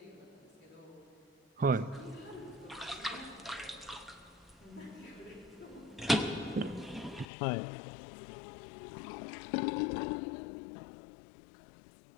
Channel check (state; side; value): drops out; right; at 7.2 s